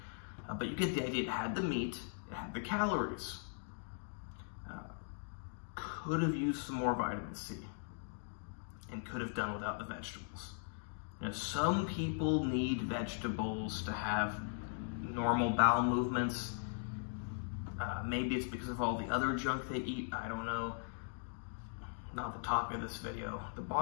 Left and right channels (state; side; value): silent; right; digital silence